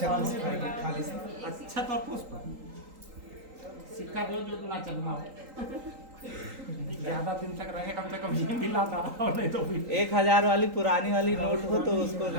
अच्छा तो पुष्प सिक्का दो जो ना चलना हो, ज्यादा दिन तक रहे, कम से कम ये दिलाता रहो, नहीं तो फिर 1000 वाली पुरानी वाली नोट हो तो उसको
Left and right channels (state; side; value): late; left; 3.8 ms